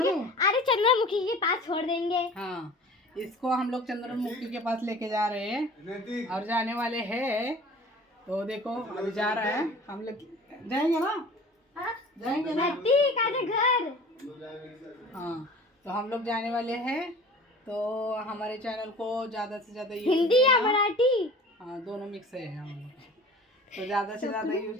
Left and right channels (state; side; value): normal; both; correlation 0.43